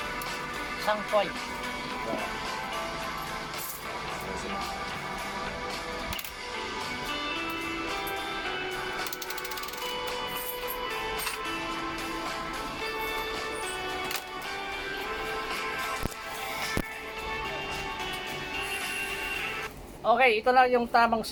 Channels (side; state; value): both; identical; correlation 1.00